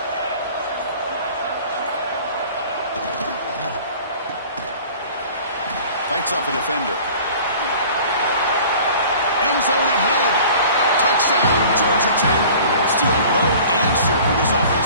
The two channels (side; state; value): both; inverted; correlation -0.46